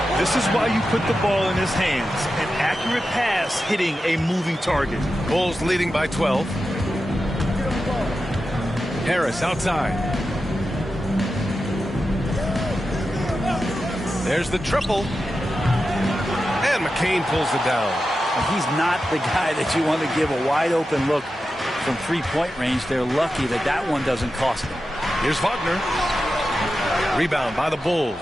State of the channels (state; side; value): normal; both; correlation 0.91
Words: This is why you put the ball in his hands. An accurate pass hitting a moving target. Bulls leading by 12. Harris outside. There's the triple. And McCain pulls it down. And he's not the guy that you want to give a wide open look from three-point range. They're lucky that that one doesn't cost them. Here's Wagner. Rebound by the